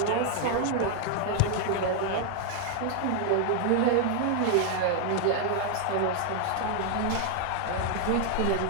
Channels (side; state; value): both; different; correlation 0.00